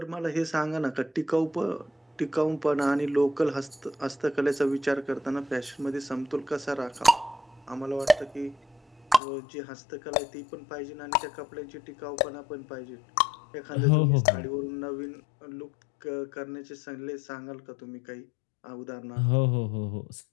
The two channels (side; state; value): right; drops out; at 9.2 s